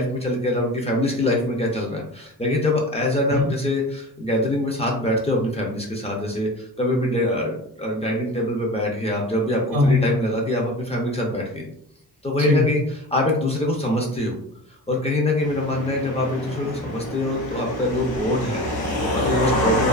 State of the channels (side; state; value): both; normal; correlation 0.34